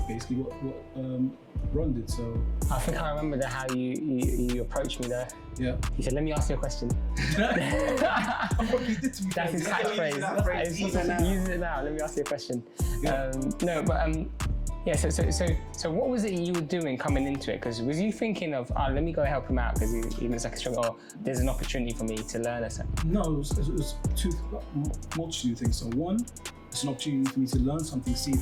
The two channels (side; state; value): both; identical; correlation 1.00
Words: basically what Ron did. So I think I remember how you approached me there. Yeah. He said, "Let me ask you a question." What you did to me. That's his catchphrase. Use it now. Let me ask you a question. Yeah. No, but yeah. So what was it you were doing coming into it? Because was you thinking of, let me go help him out because he looks like a struggle, or there's an opportunity for me to learn or something? No, it was multitude of things. So one, it's an opportunity for me to learn something, see if